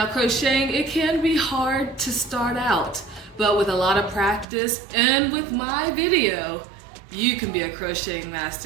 crocheting, it can be hard to start out, but with a lot of practice and with my video, you can be a crocheting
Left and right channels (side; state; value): left; drops out; at 4.5 s